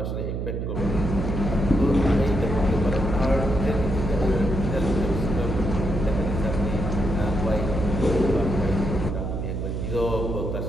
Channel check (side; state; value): right; noise; hum, 3 dB below the sound